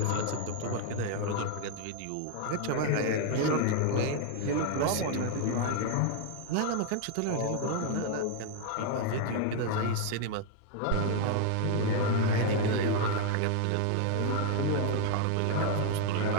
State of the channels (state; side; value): different; both; correlation 0.00